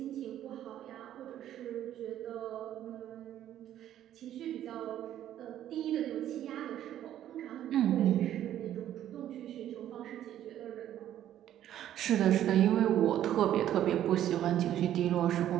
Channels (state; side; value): quieter; left; 11.6 dB